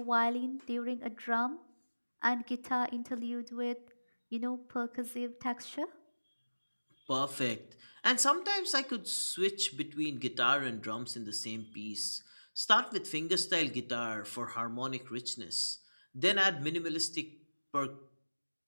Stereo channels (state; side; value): inverted; both; correlation -1.00